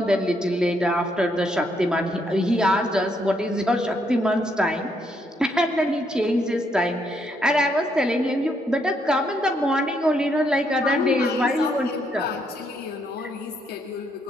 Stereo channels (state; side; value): normal; both; correlation 0.74